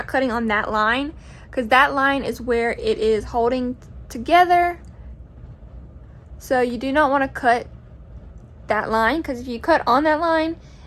cutting on that line, because that line is where it is holding together. So you do not want to cut that line, because if you cut on that line,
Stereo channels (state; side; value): identical; both; correlation 1.00